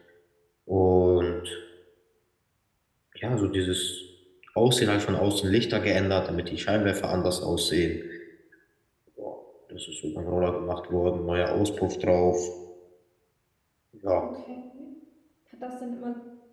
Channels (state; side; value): identical; both; correlation 1.00